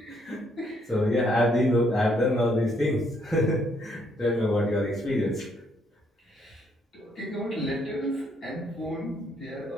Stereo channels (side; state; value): both; normal; correlation 0.71